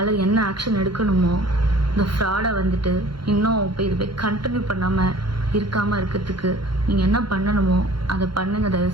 என்ன ஆக்ஷன் எடுக்கணுமோ இந்த ஃப்ராடை வந்துட்டு இன்னும் இப்போ இது போய் கண்டினியூ பண்ணாமல் இருக்காமல் இருக்கிறதுக்கு நீங்கள் என்ன பண்ணணுமோ அதை பண்ணுங்க தயவு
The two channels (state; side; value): late; left; 0.73 ms